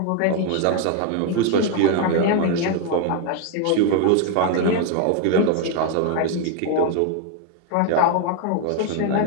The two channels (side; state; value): both; different; correlation 0.01